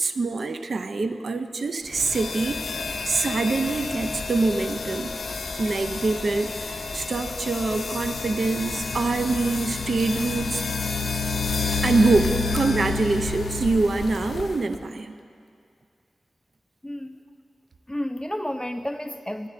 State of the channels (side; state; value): both; normal; correlation 0.89